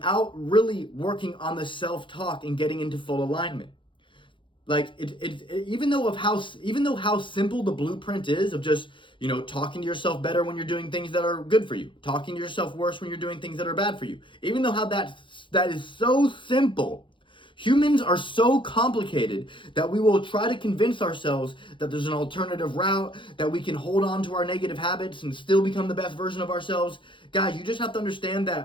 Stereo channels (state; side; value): late; right; 0.24 ms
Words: really working on the self-talk and getting into full alignment. Like even though how simple the blueprint is of just, talking to yourself better when you're doing things that are good for you, talking to yourself worse when you're doing things that are bad for you. Even though how that is so simple, humans are so complicated that we will try to convince ourselves that there's an alternative route, that we can hold on to our negative habits and still become the best version of ourselves. Guys, you just have to understand